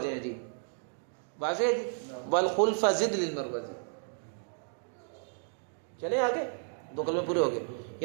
ہیں جی. واضح ہے جی. والخلف زد للمروزی. چلیں آگے. 2 کلمے پورے ہو گئے.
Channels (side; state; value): left; silent; 56 dB below the other